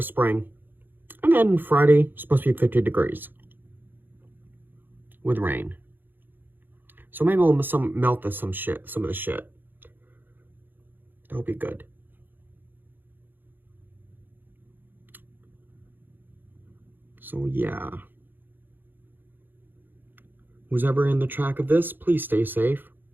spring. And then Friday, supposed to be 50 degrees. With rain. So maybe we'll melt some of the shit. That'll be good. So yeah. Who's ever in the track of this, please stay safe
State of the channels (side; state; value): left; late; 0.093 ms